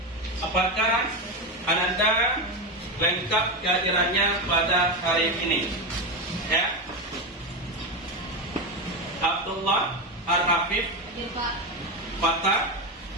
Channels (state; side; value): normal; both; correlation 0.14